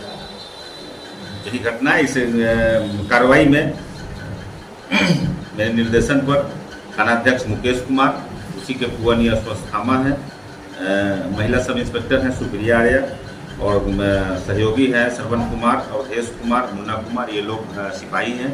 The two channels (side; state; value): both; identical; correlation 1.00